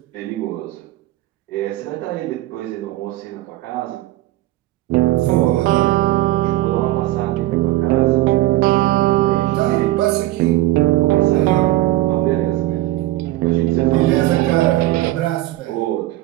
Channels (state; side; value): quieter; left; 16.5 dB